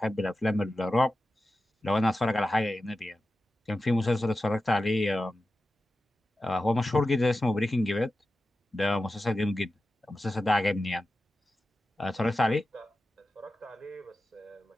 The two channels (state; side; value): normal; both; correlation 0.93